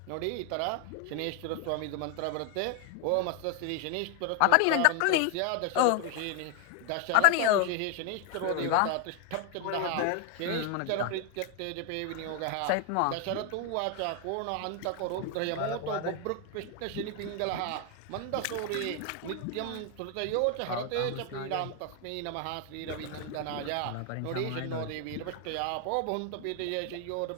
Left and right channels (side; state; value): both; different; correlation 0.01